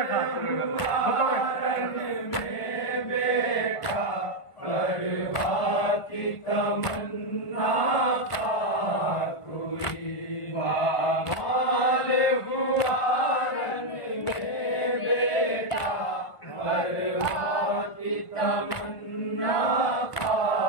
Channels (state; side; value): late; right; 1.5 ms